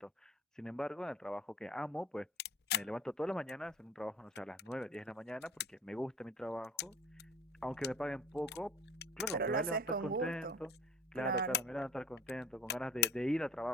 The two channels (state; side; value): normal; both; correlation 0.45